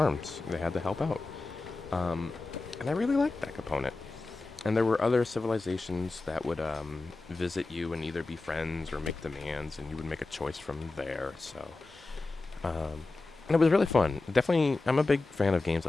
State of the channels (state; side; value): quieter; right; 3.4 dB